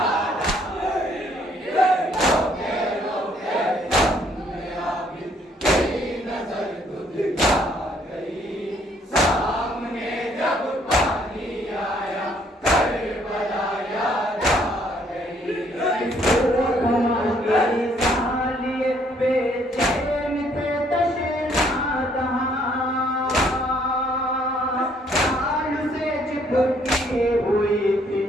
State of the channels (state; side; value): normal; both; correlation 0.66